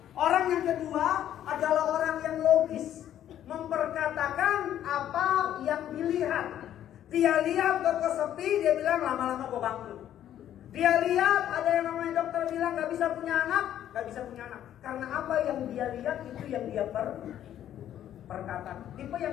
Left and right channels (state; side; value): quieter; right; 11.2 dB